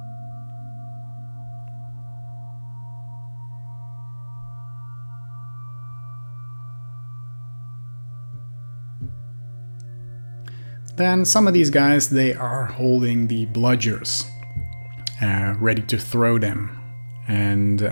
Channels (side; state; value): both; inverted; correlation -1.00